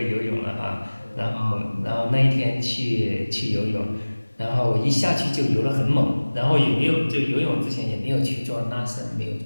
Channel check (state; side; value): inverted; both; correlation -1.00